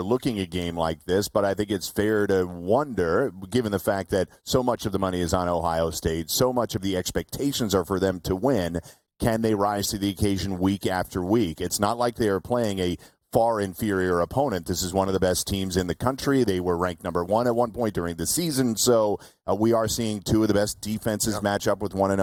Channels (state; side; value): identical; both; correlation 1.00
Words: a game like this, but I think it's fair to wonder, given the fact that so much of the money is on Ohio State, so much of the expectations are for them to win, can they rise to the occasion week after week? It's not like they are playing a far inferior opponent. This is one of the best teams in the country. They were ranked number one at one point during the season, so we are seeing two of the best defenses match up with one